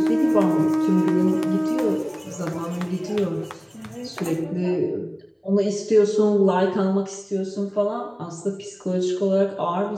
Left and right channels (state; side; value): identical; both; correlation 1.00